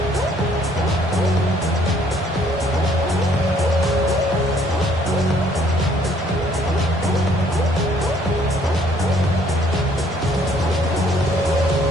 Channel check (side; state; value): both; normal; correlation 0.62